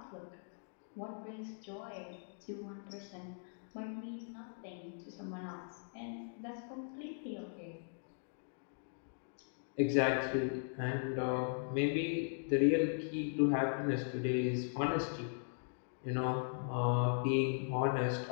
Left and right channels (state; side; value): silent; right; digital silence